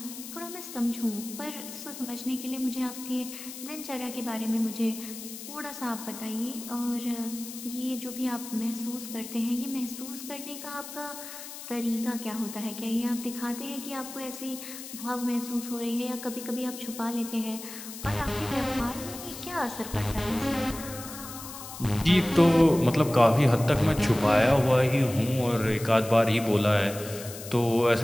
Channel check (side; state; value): left; noise; hiss, 12 dB below the sound